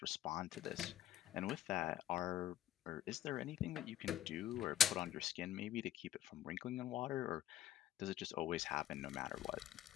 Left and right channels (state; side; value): quieter; right; 11.3 dB